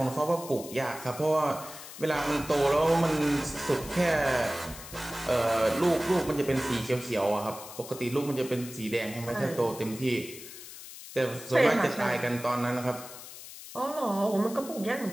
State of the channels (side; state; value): left; noise; hiss, 14 dB below the sound